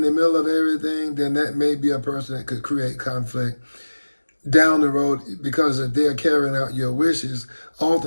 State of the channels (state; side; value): inverted; both; correlation -1.00